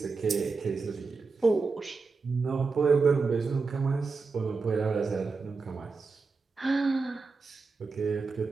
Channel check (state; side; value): quieter; left; 4.4 dB